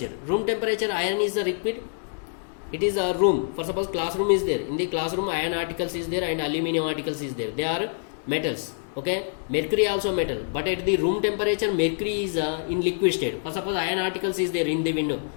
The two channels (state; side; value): silent; right; digital silence